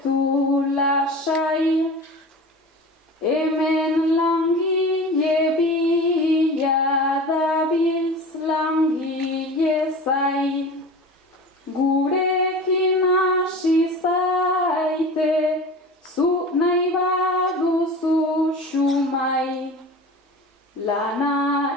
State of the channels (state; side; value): normal; both; correlation 0.34